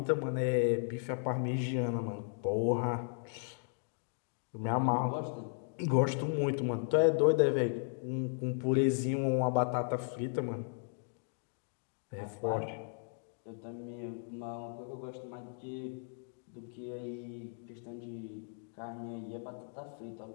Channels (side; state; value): right; silent; digital silence